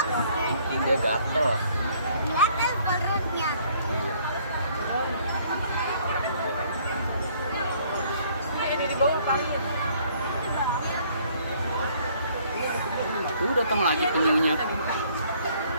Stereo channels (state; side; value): inverted; both; correlation -0.61